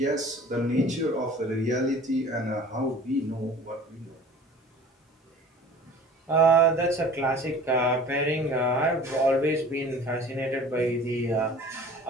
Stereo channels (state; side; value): normal; both; correlation 0.45